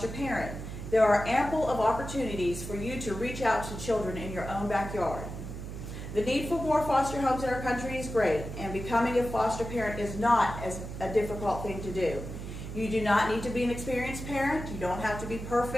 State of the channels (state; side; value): noise; right; hum, 8 dB below the sound